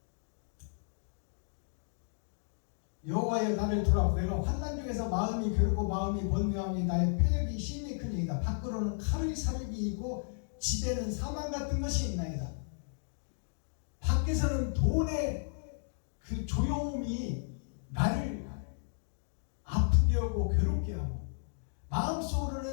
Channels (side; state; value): right; silent; digital silence